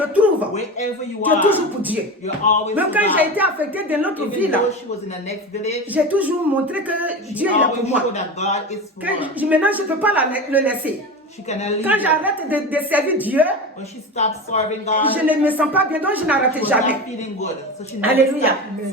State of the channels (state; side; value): normal; both; correlation 0.26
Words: te trouves, wherever you tu es are, toujours pour Dieu. you're always Même for quand j'ai God. été affectée dans l'autre Even ville, though she was in the next village, j'ai toujours montré que she Dieu est là pour always moi. showed that God is for her. Maintenant, je ne peux pas le laisser. Quand j'arrête de servir Dieu, when she stops serving God, je ne me sens pas bien, donc je n'arrête she was jamais. not feeling good. So she never Alléluia. stopped